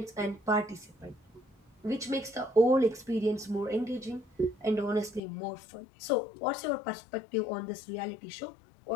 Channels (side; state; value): right; drops out; at 5.2 s